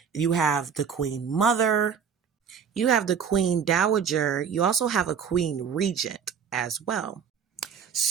You have the queen mother. You have the queen dowager. You also have a queen regent as well.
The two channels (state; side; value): quieter; left; 7.1 dB